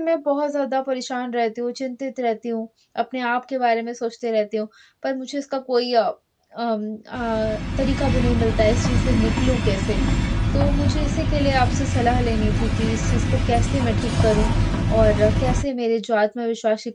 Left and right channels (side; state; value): both; identical; correlation 1.00